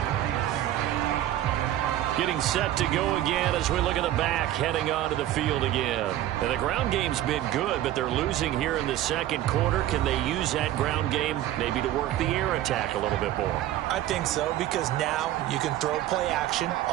Getting set to go again as we look at the back, heading onto the field again. And the ground game's been good, but they're losing here in the second quarter. Can they use that ground game maybe to work the air attack a little bit more? I think so, because now you can throw play action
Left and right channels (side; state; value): left; quieter; 13.3 dB